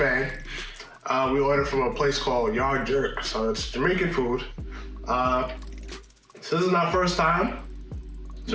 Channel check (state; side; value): identical; both; correlation 1.00